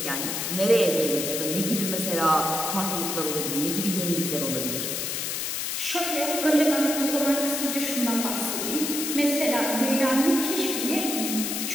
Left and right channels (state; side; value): noise; left; hiss, 2 dB below the sound